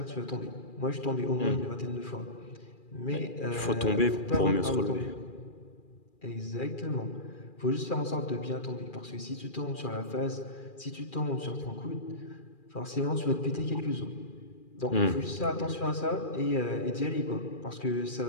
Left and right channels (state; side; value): late; right; 2.4 ms